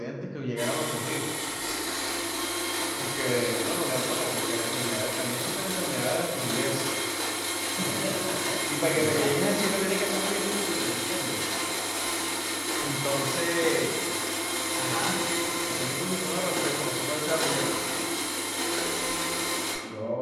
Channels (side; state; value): both; identical; correlation 1.00